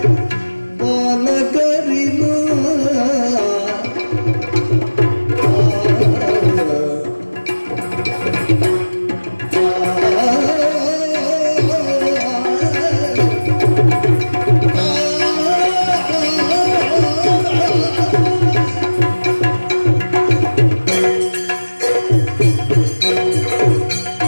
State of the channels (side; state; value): both; inverted; correlation -1.00